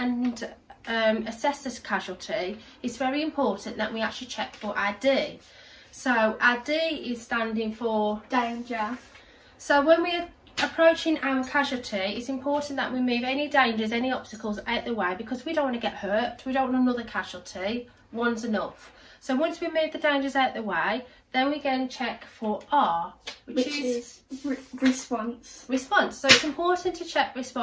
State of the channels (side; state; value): both; identical; correlation 1.00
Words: assess this casualty, it's very important that we actually check for ID. So our D is standing for danger. So when we're approaching our casualty, it's important that we move any dangers, any obstacles out the way, because we don't want to get hurt. We don't want another casualty. One's enough. So once we move the dangers out the way, then we go and check for R, which is response. Response. So it's important to check